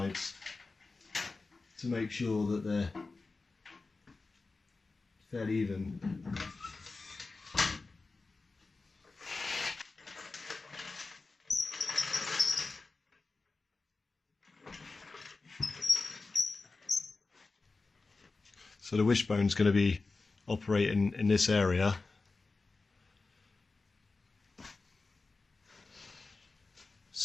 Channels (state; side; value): quieter; right; 3.8 dB